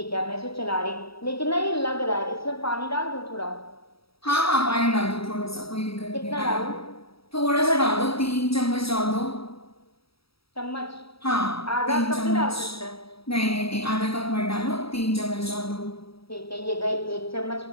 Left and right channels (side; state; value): right; late; 0.76 ms